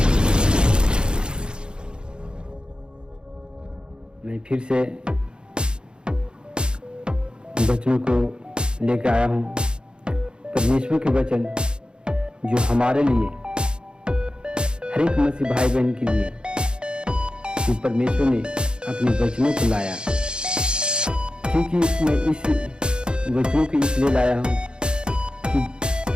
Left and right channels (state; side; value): late; left; 0.050 ms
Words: मैं फिर से वचनों को लेकर आया हूँ। परमेश्वर के वचन जो हमारे लिए, हर एक मसीह भाई बहन के लिए, कि परमेश्वर ने अपने वचनों को लाया। क्योंकि मैं इस वचनों को इसलिए लाया हूँ कि